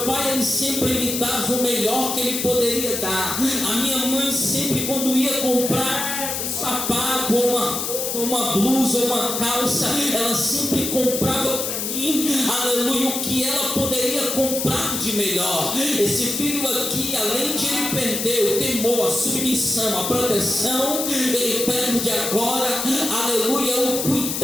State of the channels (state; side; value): noise; left; hiss, 3 dB below the sound